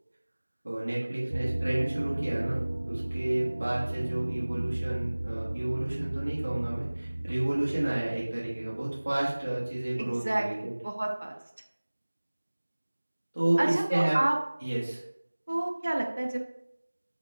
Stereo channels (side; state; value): both; inverted; correlation -1.00